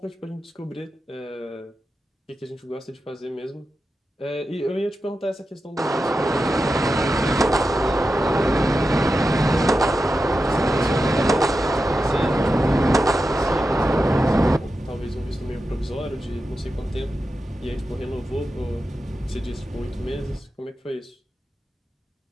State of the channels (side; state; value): both; normal; correlation 0.90